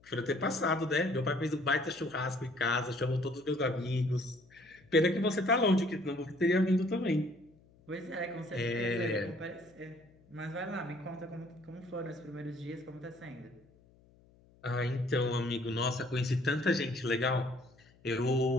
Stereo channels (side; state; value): left; noise; hum, 29 dB below the sound